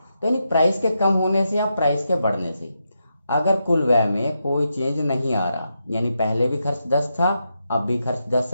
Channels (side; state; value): both; inverted; correlation -0.85